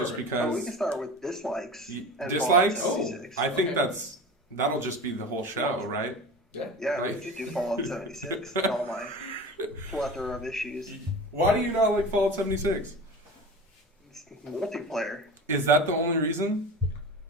Perfect. because. We can start with dislikes. and Dislikes? Fallout 76. I think Okay. that'll just be the whole show, right? Yeah. Yeah, we like- could do Fallout 76 and all my plethora of issues. Why do you not like Fallout 76? It's multiplayer. Is that the only reason?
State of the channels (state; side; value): normal; both; correlation 0.33